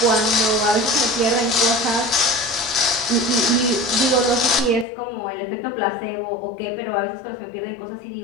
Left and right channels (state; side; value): drops out; right; at 4.9 s